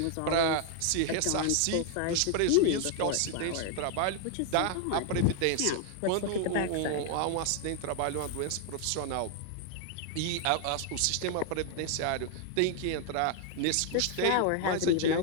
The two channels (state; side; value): different; both; correlation 0.00